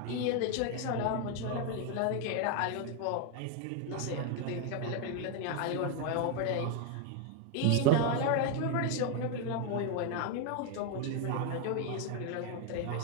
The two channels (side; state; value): both; different; correlation 0.01